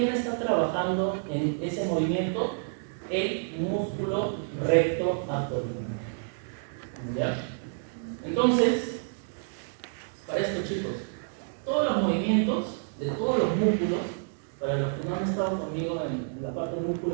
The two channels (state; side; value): silent; left; digital silence